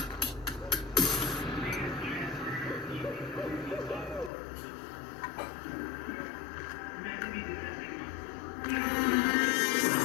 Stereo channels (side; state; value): right; drops out; at 4.3 s